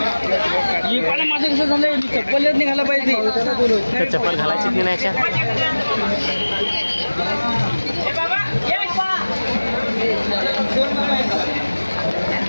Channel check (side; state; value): both; inverted; correlation -1.00